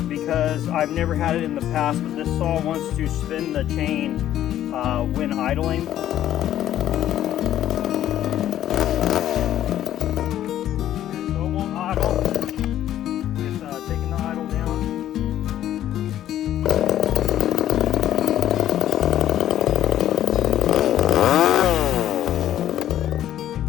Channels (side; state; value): right; quieter; 12.0 dB